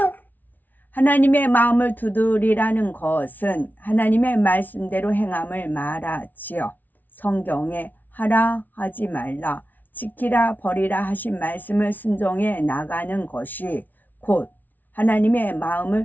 하나님의 마음을 두드리라는 것은 하나님의 말씀대로 행함을 말하지요. 성경에 하라 하지 말라 지키라 버리라 하신 말씀을 순종해 나가는 것이 곧 하나님의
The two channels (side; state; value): right; late; 0.083 ms